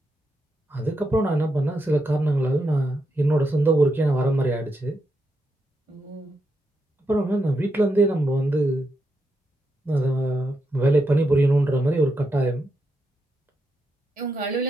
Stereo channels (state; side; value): normal; both; correlation 0.83